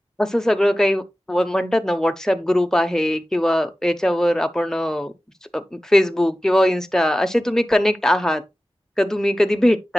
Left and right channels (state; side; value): normal; both; correlation 0.95